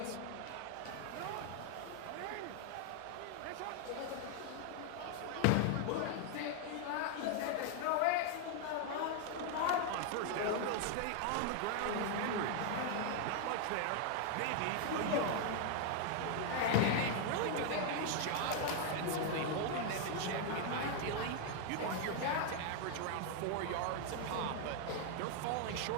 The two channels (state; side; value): different; both; correlation 0.00